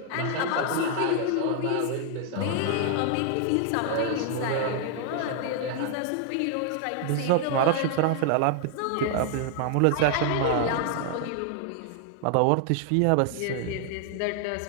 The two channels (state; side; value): different; both; correlation 0.00